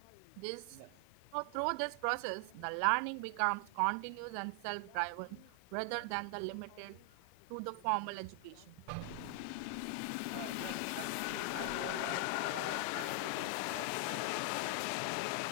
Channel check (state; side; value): different; both; correlation 0.00